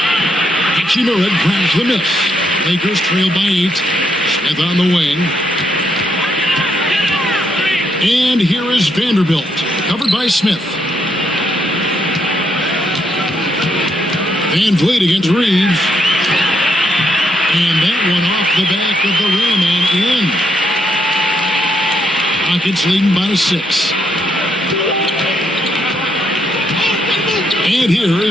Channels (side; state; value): both; normal; correlation 0.76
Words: Hachimura grabs the miss. Lakers trail by 8. Smith on the wing. And here is Vanderbilt, covered by Smith. Van Vliet against Reeves. And that one off the back of the rim and in. Rockets leading by 6. And here